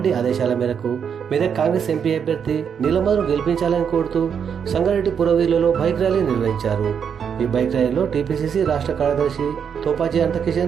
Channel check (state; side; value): quieter; left; 7.4 dB